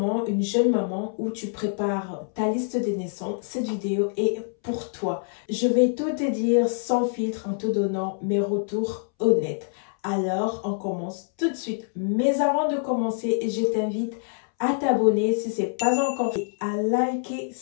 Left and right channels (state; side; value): silent; right; 61 dB below the other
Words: une jeune maman ou tu prépares ta liste de naissance, cette vidéo est pour toi. Je vais tout te dire sans filtre en te donnant mes retours honnêtes. Alors, on commence tout de suite. Mais avant de commencer, je t'invite à t'abonner si ce n'est pas encore fait, à liker